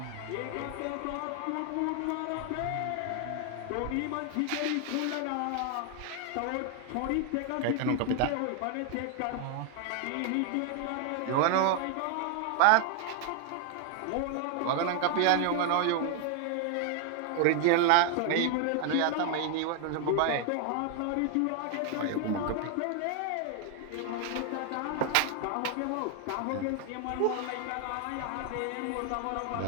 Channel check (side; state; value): both; different; correlation 0.00